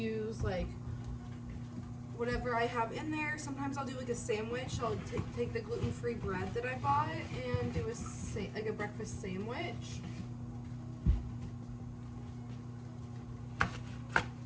like whatever I have in there. Sometimes I'll do like a sandwich. I'll take the gluten-free bread that I bought and do like a breakfast sandwich.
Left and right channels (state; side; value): identical; both; correlation 1.00